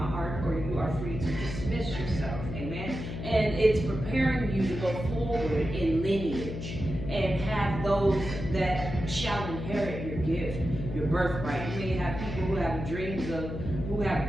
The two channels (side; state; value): left; noise; hum, 7 dB below the sound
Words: or you are free to dismiss yourself, amen? And it's preparing you to go forward in lineage and have those that shall inherit your gift, your birthright. You may have people who have dreams of, who have